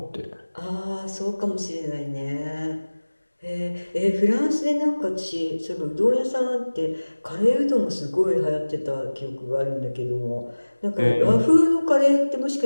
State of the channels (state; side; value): inverted; both; correlation -1.00